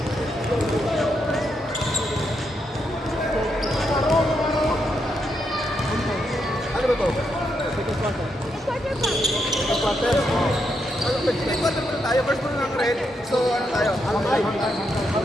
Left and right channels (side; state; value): both; normal; correlation 0.81